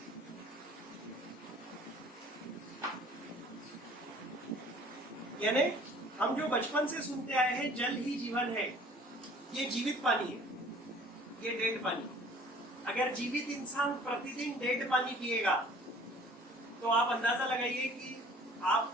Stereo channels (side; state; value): both; normal; correlation 0.51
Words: यानी हम जो बचपन से सुनते आए हैं जल ही जीवन है, ये जीवित पानी है, ये डेड पानी। अगर जीवित इंसान प्रतिदिन डेड पानी पिएगा तो आप अंदाजा लगाइए कि